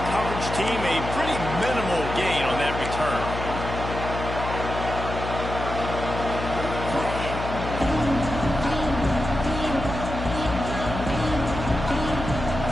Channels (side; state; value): left; noise; hum, 6 dB below the sound